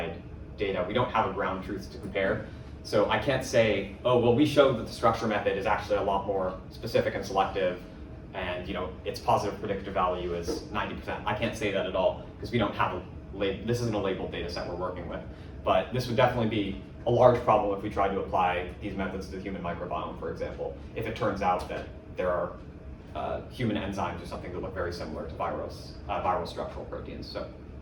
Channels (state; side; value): identical; both; correlation 1.00